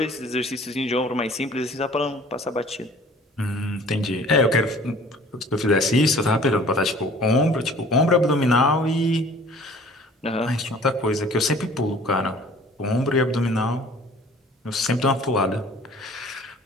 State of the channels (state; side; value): normal; both; correlation 0.50